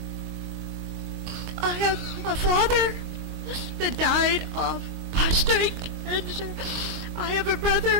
I have a father that died of prostate cancer. I have a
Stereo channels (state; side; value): late; left; 22 ms